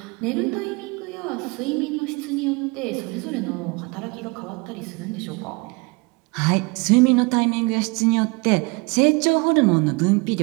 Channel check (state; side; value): quieter; left; 27.6 dB